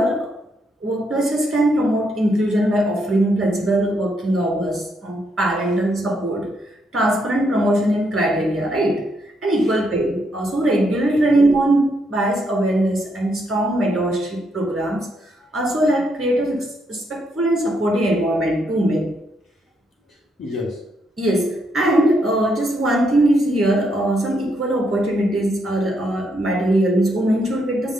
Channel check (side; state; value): both; normal; correlation 0.77